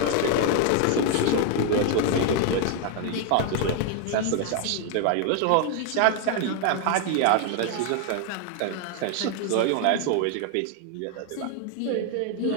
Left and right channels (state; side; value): different; both; correlation 0.00